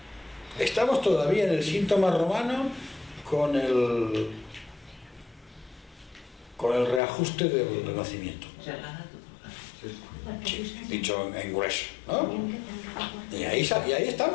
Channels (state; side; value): drops out; right; at 7.0 s